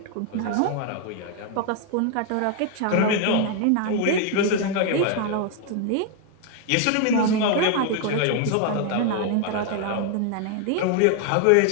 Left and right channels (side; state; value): both; different; correlation 0.00